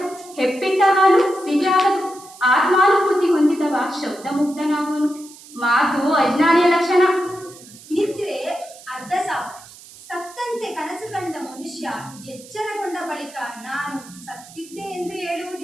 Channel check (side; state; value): right; noise; hiss, 20 dB below the sound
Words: ಹೆಪ್ಪಿಟ್ಟ ಹಾಲು ಸಿಹಿಯಾಗದು. ಆತ್ಮಾನುಭೂತಿ ಹೊಂದಿದವ ಶಬ್ದ ಮುಕ್ತನಾಗುವನು. ಮಾತು ಅಜ್ಞಾನಿಯ ಲಕ್ಷಣ. ನಿದ್ರೆ ಅರ್ಧ ಸಾವು. ಸತ್ತಂತೆ ಕನಸು ಕಂಡ ಮನುಷ್ಯ ಎಚ್ಚರಗೊಂಡ ಬಳಿಕ ನಾನು ಸತ್ತಿದ್ದೆ ಎಂದು